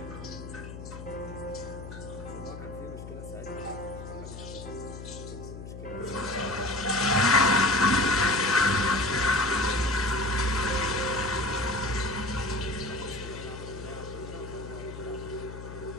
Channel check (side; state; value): left; noise; hum, 11 dB below the sound